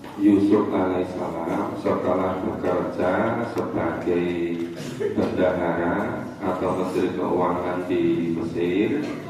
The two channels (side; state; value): both; identical; correlation 1.00